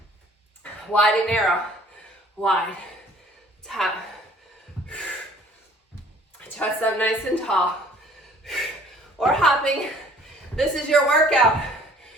Wide and narrow. Wide. Tap. Chest up nice and tall. Or hopping. This is your workout.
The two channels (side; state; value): both; normal; correlation 0.54